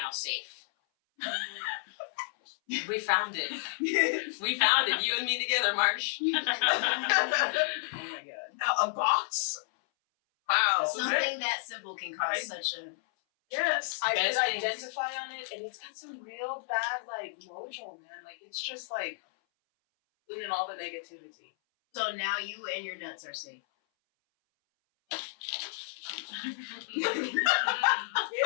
safe." We found it. We found it. You and me together, Marsh. Oh my god. A box? Wow. Something that simple can cause such a. Yes. I did Best things. identify on it, and it's got some real bad, like, mojo, man. Like, it's just, like, in all the negativity. So now you and your nuts are safe. Damn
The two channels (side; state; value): right; silent; 57 dB below the other